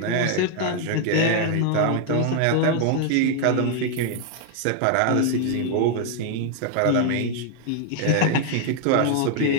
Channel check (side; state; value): both; different; correlation 0.00